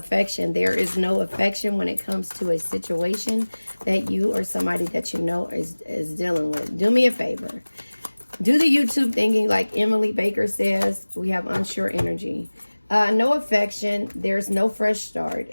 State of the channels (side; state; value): both; inverted; correlation -1.00